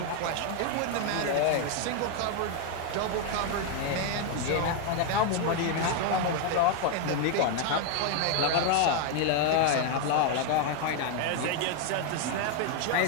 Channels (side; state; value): both; different; correlation 0.01